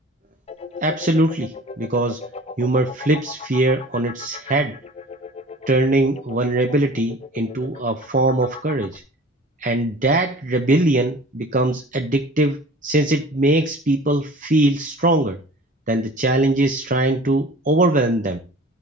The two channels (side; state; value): both; normal; correlation 0.44